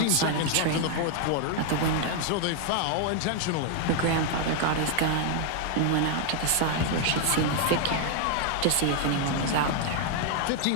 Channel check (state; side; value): different; both; correlation 0.00